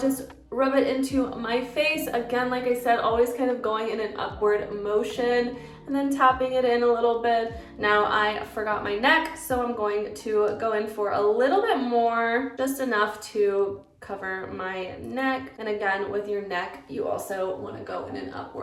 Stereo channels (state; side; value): identical; both; correlation 1.00